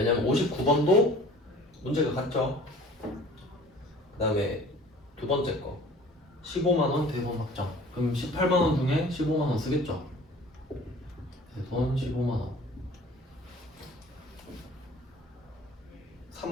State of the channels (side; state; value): both; normal; correlation 0.47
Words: 59번도 문제가 같죠. 그 다음에 두 번째 거 15만원 대손 확정. 그럼 18만원 중에 15만원 쓰겠죠. 대손 15만원